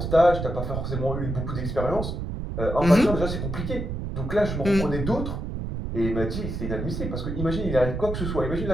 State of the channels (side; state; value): right; noise; rumble, 4 dB below the sound